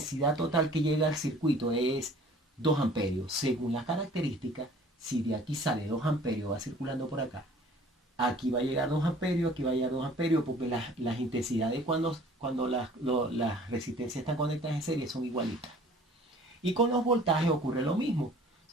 total que llega al circuito es 2 amperios. Según las características, si de aquí sale 2 amperios, va circulando por acá, aquí va a llegar 2 amperios, aquí va a llegar 2 amperios, porque las intensidades cuando las resistencias están conectadas en serie son igualitas. Y con los voltajes ocurre lo mismo. O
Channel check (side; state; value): both; normal; correlation 0.50